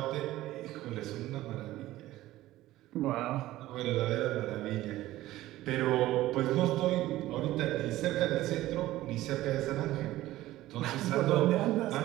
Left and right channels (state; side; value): quieter; left; 15.9 dB